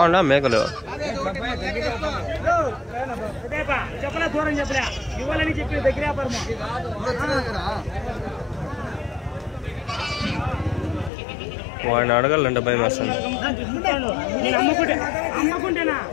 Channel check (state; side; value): drops out; right; at 11.1 s